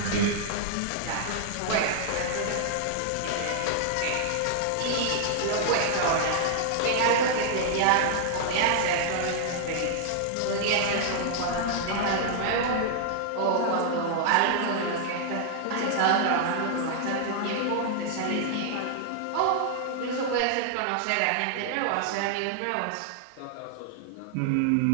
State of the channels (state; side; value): different; both; correlation -0.01